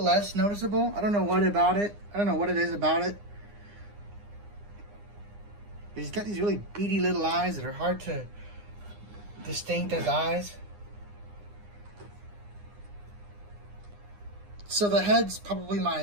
less noticeable. I don't know what about it. I don't know what it is about it. He's got these really beady little eyes that are hard to distinct as eyes. So the head's probably my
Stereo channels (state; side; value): late; left; 9.8 ms